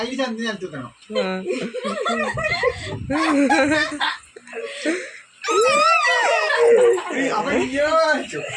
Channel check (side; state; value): both; identical; correlation 1.00